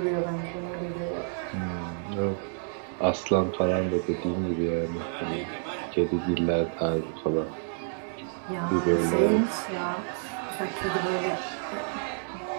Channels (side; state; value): left; silent; digital silence